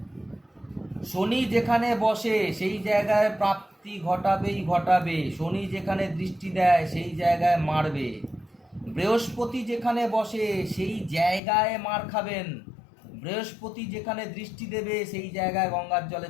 শনি যেখানে বসে সেই জায়গায় প্রাপ্তি ঘটাবেই ঘটাবে, শনি যেখানে দৃষ্টি দেয় সেই জায়গায় মারবে। বৃহস্পতি যেখানে বসে সেই জায়গায় মার খাবেন, বৃহস্পতি যেখানে দৃষ্টি দেবে সেই জায়গায় গঙ্গার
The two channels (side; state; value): right; drops out; at 11.4 s